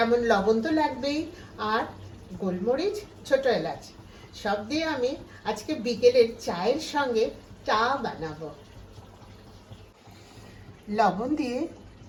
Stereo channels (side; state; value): both; identical; correlation 1.00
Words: লবণ তো লাগবেই, আর গোলমরিচ, ছোট এলাচ, সব দিয়ে আমি আজকে বিকেলের চায়ের সঙ্গে চা বানাবো। লবণ দিয়ে